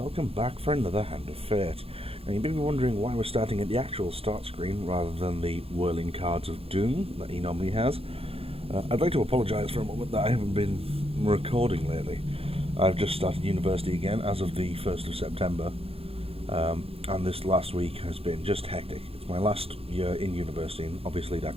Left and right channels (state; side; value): late; left; 0.28 ms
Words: back for another Hand of Fate. Now, you may be wondering why we're starting at the actual start screen rather than the whirling cards of doom that he normally has. I'd like to apologise for a moment that I haven't been recording lately. I've just started university again as of the 1st of September, and this last week has been just hectic. It's my last year in university, and obviously